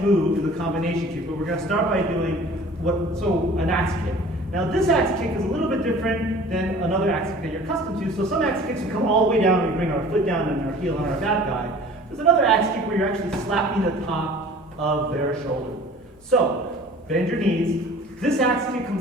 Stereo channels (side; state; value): both; normal; correlation 0.46